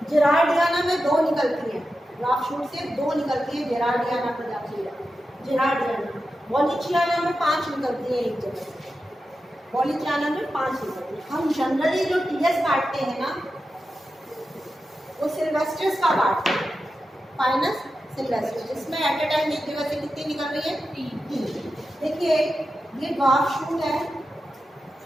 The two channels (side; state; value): both; normal; correlation 0.91